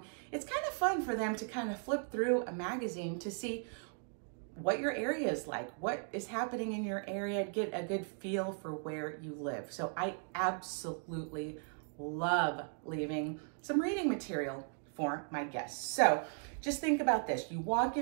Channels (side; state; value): left; silent; 53 dB below the other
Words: It's kind of fun for them to kind of flip through a magazine to see what your area is like, what is happening in your area, get a good feel for where you live. So I absolutely love leaving some reading material for my guests. So just think about this. You walk